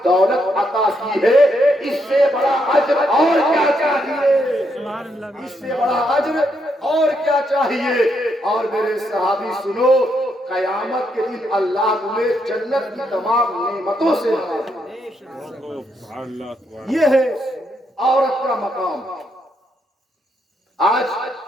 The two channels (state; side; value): normal; both; correlation 0.78